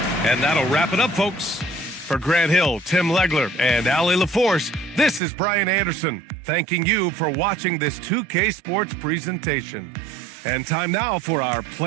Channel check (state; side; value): drops out; left; at 5.2 s